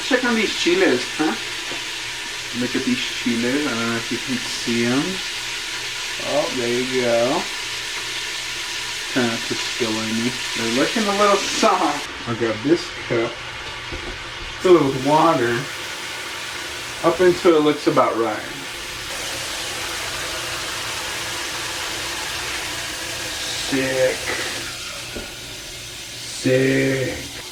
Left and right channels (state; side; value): identical; both; correlation 1.00